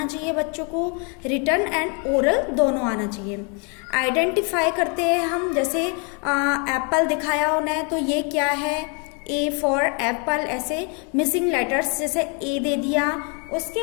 चाहिए बच्चों को, रिटन एंड ओरल दोनों आना चाहिए। आइडेंटिफाई करते हैं हम, जैसे एप्पल दिखाया उन्हें तो ये क्या है, A फॉर एप्पल, ऐसे मिसिंग लेटर्स जैसे A दे दिया, उसके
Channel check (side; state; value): right; quieter; 35.8 dB